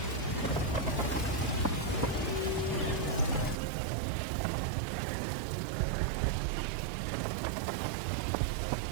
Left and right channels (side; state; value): left; drops out; at 3.6 s